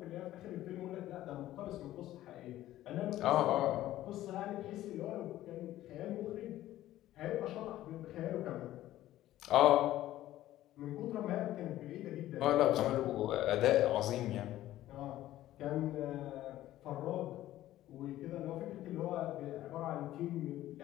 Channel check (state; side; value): quieter; right; 14.3 dB